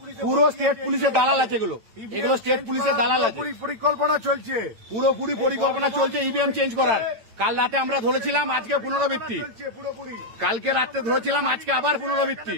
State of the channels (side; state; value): left; late; 8.9 ms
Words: পুরো স্টেট পুলিশের দালাল আছে। এগুলো স্টেট পুলিশের দালাল আছে। পরিকল্পনা চলছে, পুরোপুরি পরিকল্পনা চলছে ইভিএম চেঞ্জ করার। কাল রাতে আমরা ধরেছিলাম, আজকে পুনরাবৃত্তি। কালকে রাতে ধরেছিলাম, আজকে আবার পুনরাবৃত্তি।